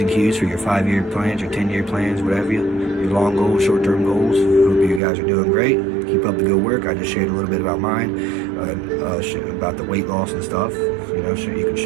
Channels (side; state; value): left; drops out; at 5.0 s